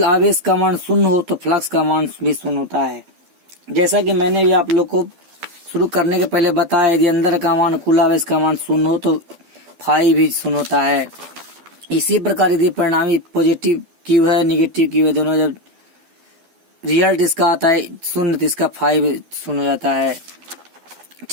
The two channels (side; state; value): left; late; 12 ms